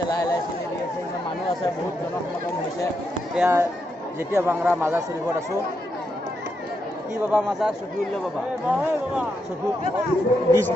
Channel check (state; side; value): normal; both; correlation 0.82